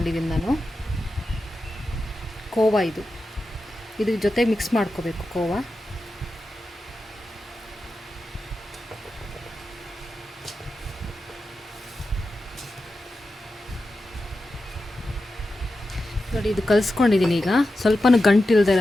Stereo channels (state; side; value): normal; both; correlation 0.91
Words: ನಾನು. ಕೋವಾ ಇದ್ರ ಜೊತೆ ಮಿಕ್ಸ್ ಮಾಡ್ಕೋಬೇಕು. ಕೋವಾ ನೋಡಿ, ಇದು ಕಲಿಸ್ಕೊಂಡಿದ್ದೀನಿ. ಈಗ ಸ್ವಲ್ಪನೂ ಗಂಟಿಲ್ಲದೆ